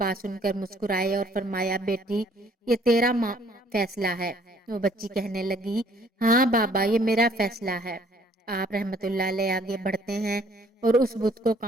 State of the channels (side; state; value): both; normal; correlation 0.60